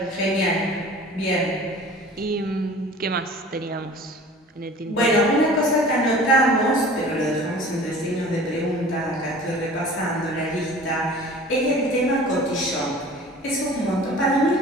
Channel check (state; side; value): normal; both; correlation 0.44